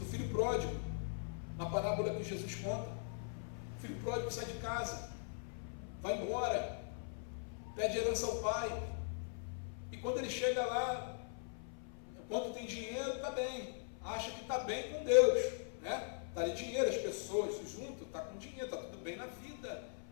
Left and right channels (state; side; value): silent; right; 51 dB below the other